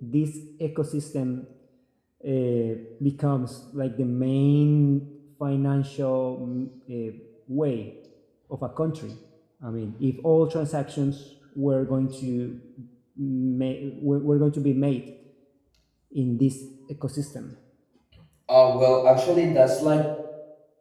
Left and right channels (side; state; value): both; identical; correlation 1.00